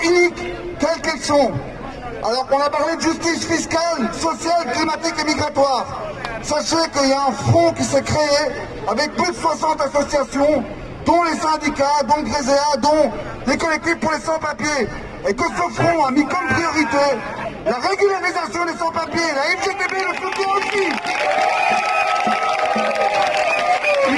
iniques, quelles qu'elles sont. Alors qu'on a parlé de justice fiscale, sociale, climatique et migratoire. Sachez qu'il y a un front qui s'est créé avec plus de 60 associations, dont les syndicats, dont Gréséa, dont les collectifs pour les sans-papiers. Et que ce front a mis comme priorité la régularisation des sans-papiers. La FGTB le soutient aussi.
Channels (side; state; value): both; identical; correlation 1.00